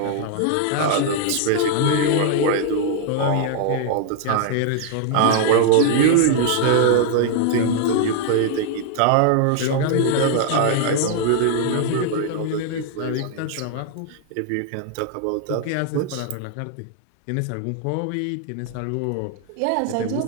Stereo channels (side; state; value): both; different; correlation 0.00